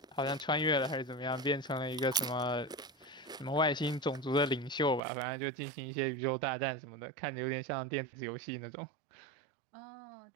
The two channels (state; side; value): drops out; left; at 5.0 s